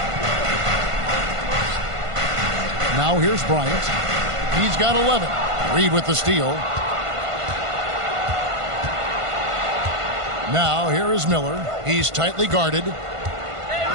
Now here's Bryant. He's got 11. Reed with the steal. Now here is Miller. He's tightly guarded.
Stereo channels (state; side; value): late; left; 1.5 ms